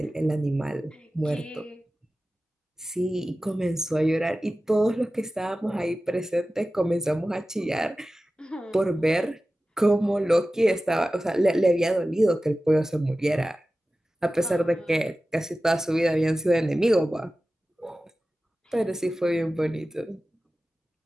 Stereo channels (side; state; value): both; normal; correlation 0.95